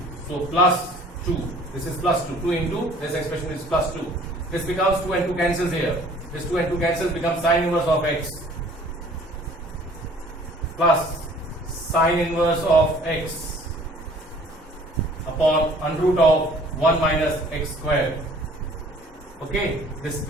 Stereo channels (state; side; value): normal; both; correlation 0.53